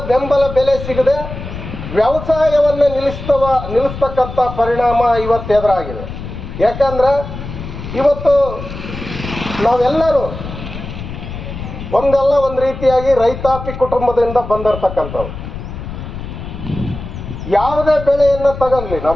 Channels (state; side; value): noise; left; rumble, 9 dB below the sound